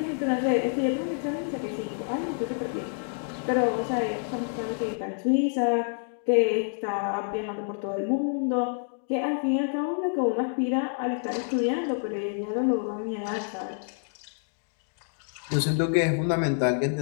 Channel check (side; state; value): right; silent; 59 dB below the other